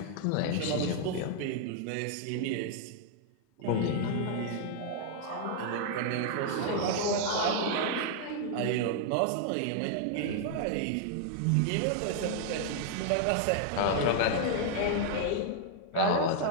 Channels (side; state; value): both; different; correlation -0.01